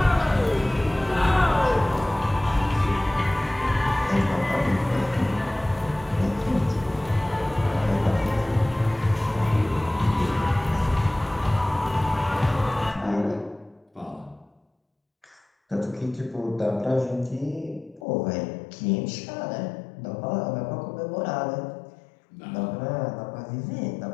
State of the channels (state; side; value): drops out; right; at 18.0 s